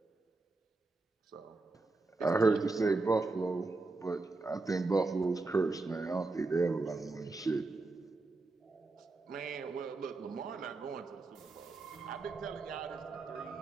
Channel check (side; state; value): left; quieter; 3.4 dB